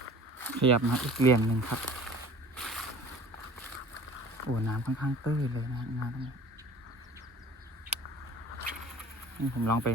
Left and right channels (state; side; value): normal; both; correlation 0.46